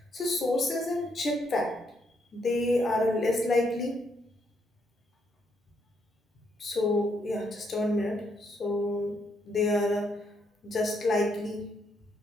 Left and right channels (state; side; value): normal; both; correlation 0.75